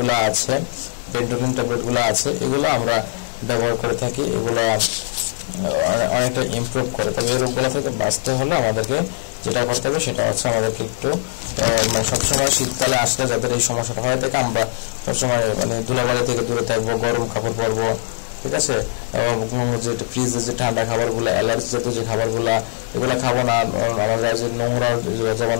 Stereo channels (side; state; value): right; silent; digital silence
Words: আছে, বেন্টোলিন ট্যাবলেটগুলো আছে, এগুলো আমরা ব্যবহার করে থাকি। এগুলো অনেকটা ইমপ্রুভ করে। তবে এই রোগগুলো থেকে বাঁচতে হলে আমাদেরকে যেটা করতে হবে সেটা হচ্ছে আমাদেরকে একটু সবসময় শীতকালে আসলে যাদের এই সমস্যাটা হয়ে থাকে, আমরা সবসময় মানে ধুলাবালি থেকে দূরে থাকবো, গরম কাপড় পরবো, ঠিক আছে। যে ফ্রিজে যে ঠান্ডা খাবারগুলো, অ্যালার্জি জাতীয় যে খাবারগুলো, এগুলো খাবো না। আমরা যে নোংরা, যেমন